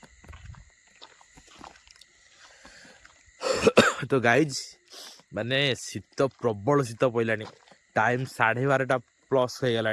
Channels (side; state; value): both; identical; correlation 1.00